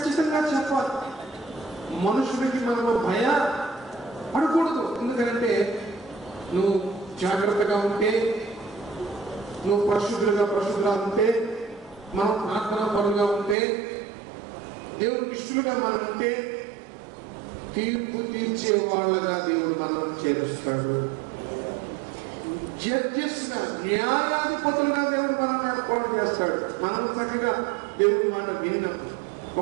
చెప్పాలి. మనుషుడికి మనము భయపడకూడదు. ఎందుకంటే నువ్వు జాగ్రత్తగా ఉంటే, నువ్వు పరిశుద్ధులుగా ఉంటే, మనం ప్రార్థనా పరులుగా ఉంటే, దేవుడికి ఇష్టలుగా మనం ఉంటే తీర్పు తీర్చే వాళ్ళగా దేవుడు మనం చేరుస్తాడు. జడ్జెస్గా, న్యాయాధిపతులుగా దేవుడు మనం ఏర్పాటు చేస్తాడు. మనం చక్కగా దేవుడి మాట విన్నప్పుడు,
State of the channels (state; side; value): drops out; left; at 13.6 s